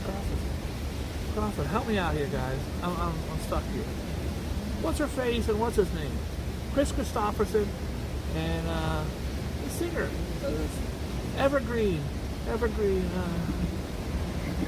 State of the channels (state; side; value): identical; both; correlation 1.00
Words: Crawford, help me out here, guys. I'm stuck here. What's her face and what's his name? Chris Christopherson and the singer. Evergreen.